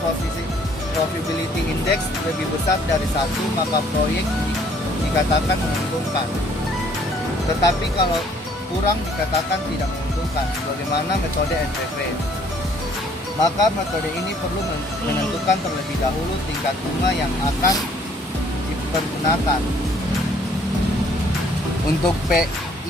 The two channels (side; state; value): both; normal; correlation 0.61